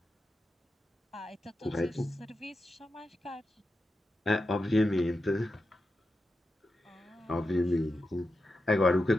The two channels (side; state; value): both; normal; correlation 0.89